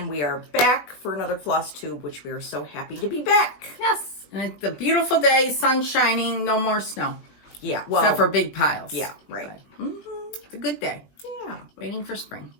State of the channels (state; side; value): late; right; 20 ms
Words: we are back for another floss tube, which we are so happy to be back. Yes, and it's a beautiful day, sun shining, no more snow. Yeah, well. Except for big piles. Yeah, right. It's a good day. Yeah. Waiting for spring.